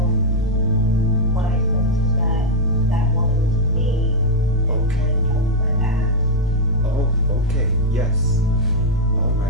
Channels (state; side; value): normal; both; correlation 0.00